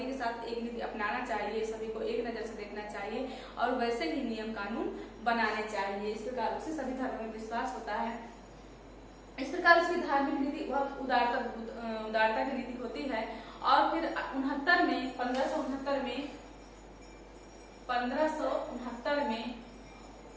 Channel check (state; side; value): identical; both; correlation 1.00